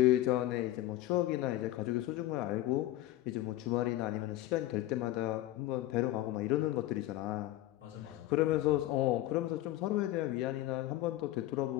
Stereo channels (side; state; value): right; quieter; 15.3 dB